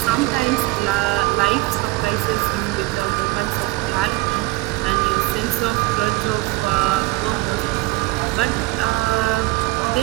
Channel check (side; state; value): left; quieter; 20.9 dB